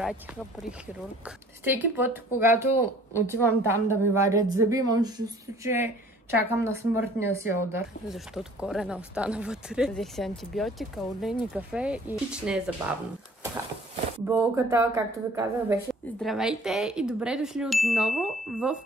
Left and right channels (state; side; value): normal; both; correlation 0.52